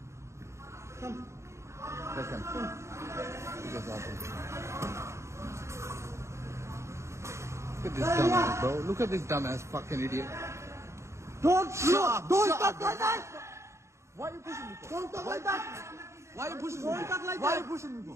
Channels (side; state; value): left; late; 0.14 ms